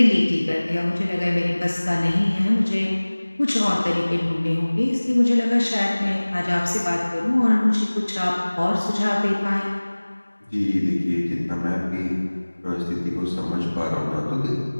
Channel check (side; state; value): both; inverted; correlation -1.00